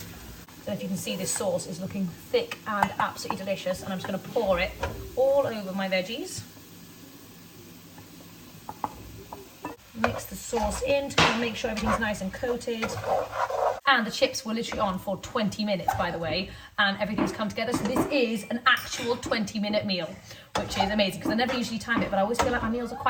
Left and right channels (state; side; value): identical; both; correlation 1.00